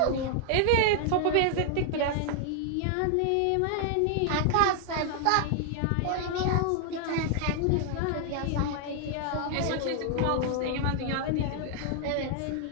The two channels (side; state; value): both; different; correlation 0.00